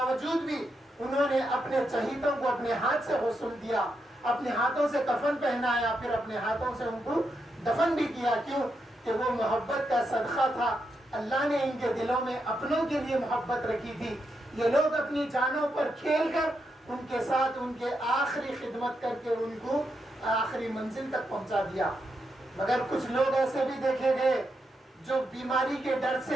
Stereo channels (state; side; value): normal; both; correlation 0.83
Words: بھی انہوں نے اپنے چہیتوں کو اپنے ہاتھ سے غسل دیا، اپنے ہاتھوں سے کفن پہنایا، پھر اپنے ہاتھوں سے ان کو دفن بھی کیا۔ کیوں؟ کہ وہ محبت کا صدقہ تھا، اللہ نے ان کے دلوں میں اپنوں کے لیے محبت رکھی تھی۔ یہ لوگ اپنی جانوں پر کھیل کر ان کے ساتھ ان کے آخری خدمت کر کے ان کو آخری منزل تک پہنچا دیا۔ مگر کچھ لوگ ایسے بھی دیکھے گئے جو بیماری کے ڈر